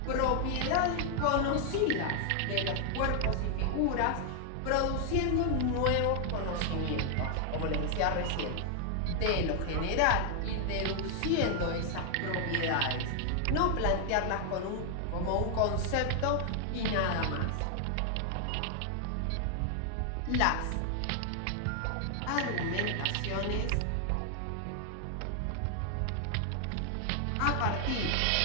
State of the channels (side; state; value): both; different; correlation 0.00